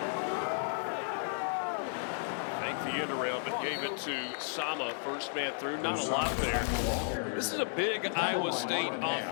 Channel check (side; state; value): right; silent; digital silence